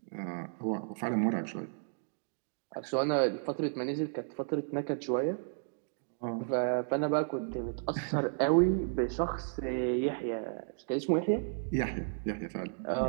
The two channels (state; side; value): silent; left; digital silence